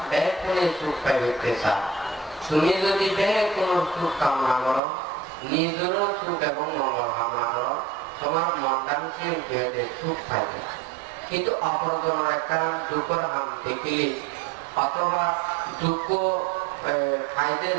ব্যাগ করে সুখ পাইতে চায়। তুমি যদি ব্যাগ কোন সুখ কামনা করো নিজেরও সুখ এবং মঙ্গল কামনা করো তোমার মনটা নিশ্চিত সুখ পাইবে। কিন্তু অপরজনের একটা দুঃখের হাম দেখিলে অথবা দুঃখ খাইতে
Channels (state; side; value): drops out; left; at 4.8 s